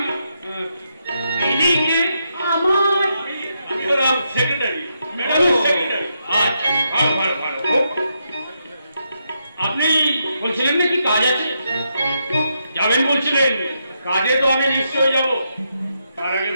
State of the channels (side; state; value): both; inverted; correlation -0.82